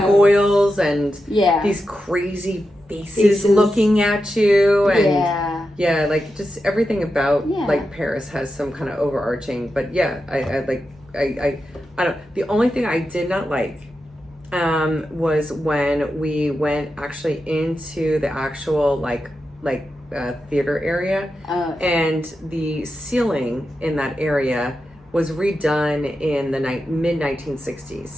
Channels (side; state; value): both; normal; correlation 0.89